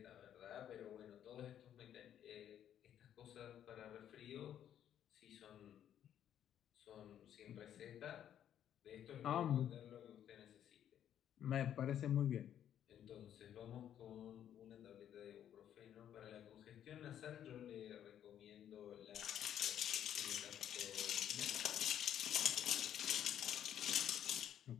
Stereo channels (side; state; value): right; quieter; 10.2 dB